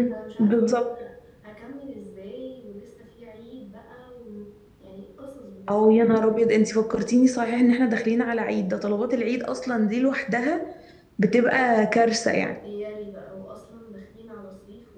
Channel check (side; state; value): both; identical; correlation 1.00